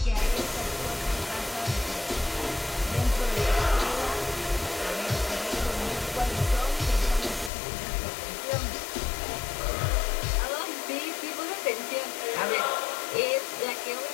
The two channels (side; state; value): right; drops out; at 7.5 s